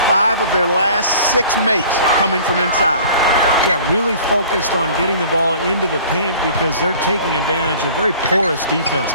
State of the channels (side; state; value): both; inverted; correlation -0.48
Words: 5 of their last 6 makes coming from inside. Yeah, really focused on getting the ball into the paint because they're taking advantage of very porous defense